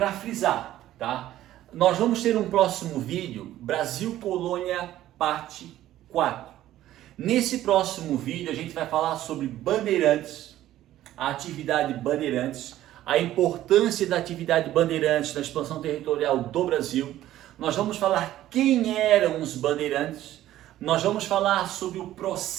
frisar, tá? Nós vamos ter um próximo vídeo, Brasil Colônia, parte 4. Nesse próximo vídeo, a gente vai falar sobre Bandeirantes, a atividade Bandeirantes, a importância da atividade Bandeirantes na expansão territorial do Brasil. Nós vamos falar quem eram os bandeirantes. Nós vamos falar sobre o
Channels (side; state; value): left; quieter; 13.6 dB